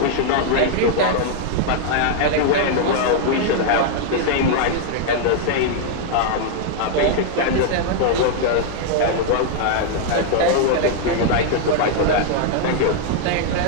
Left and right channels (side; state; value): both; different; correlation 0.00